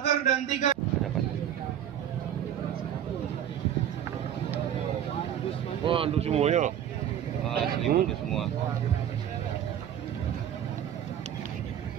dan 3 Wah, untuk semuanya. Selimut semua.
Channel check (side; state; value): left; quieter; 10.0 dB